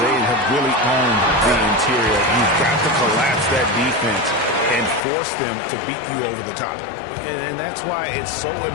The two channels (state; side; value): drops out; right; at 5.0 s